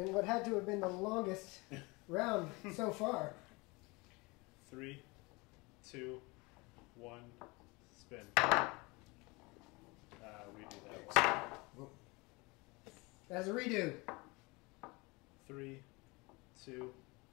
what had to have been the longest round so far. 3, 2, 1, spin. We do that one. That's a redo. 3, 2,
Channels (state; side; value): quieter; right; 25.5 dB